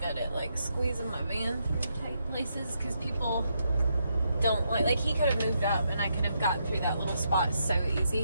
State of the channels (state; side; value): inverted; both; correlation -0.79